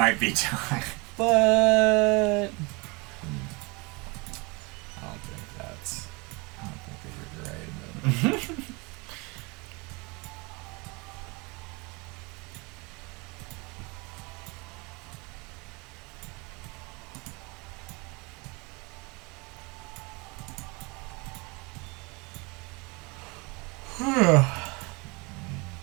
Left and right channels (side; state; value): left; quieter; 27.7 dB